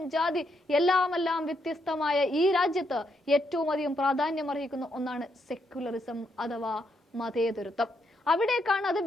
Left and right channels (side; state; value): both; normal; correlation 0.78